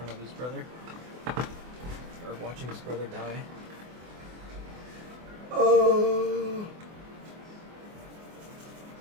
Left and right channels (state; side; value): late; left; 24 ms